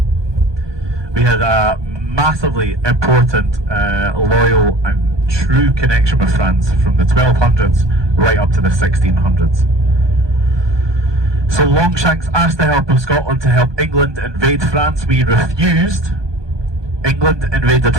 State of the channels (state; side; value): late; left; 1.2 ms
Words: We had a massively important, loyal and true connection with France from the 1200s right up to the 1600s. So Longshanks asked the help of Scotland to help England invade France. We refused. England invaded